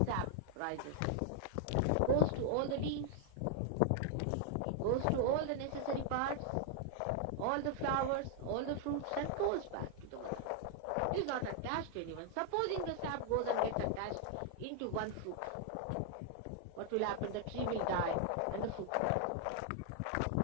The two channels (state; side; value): different; both; correlation 0.00